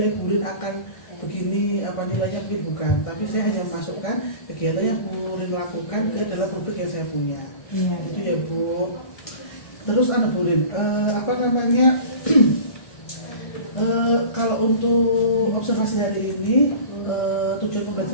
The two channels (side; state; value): right; late; 1.6 ms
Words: Bu Rin akan begini, nilainya mungkin bukan, tapi saya hanya masukkan kegiatan yang Bu Rin lakukan ke dalam rubrik yang saya punya. Itu ya Bu. Terus Bu Rin, kalau untuk observasi hari ini tujuan